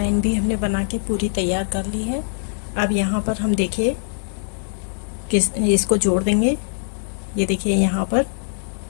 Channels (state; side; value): silent; right; digital silence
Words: भी हमने बना के पूरी तैयार कर ली है। अब यहाँ पर हम देखिए इसको जोड़ देंगे। ये देखिए यहाँ पर